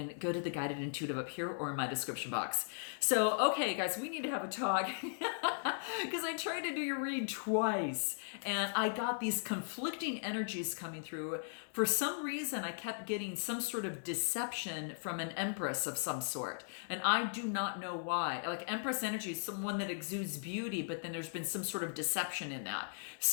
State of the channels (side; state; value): right; silent; digital silence